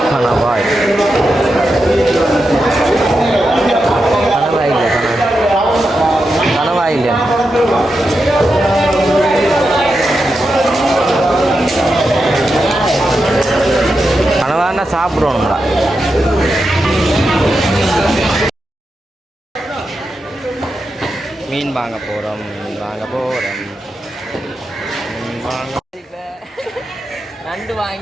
கணவாய் கணவாய் இல்லையா? கனவானா சாப்பிடுவோம்டா. மீன் வாங்க போகிறோம். நண்டு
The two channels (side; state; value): both; normal; correlation 0.88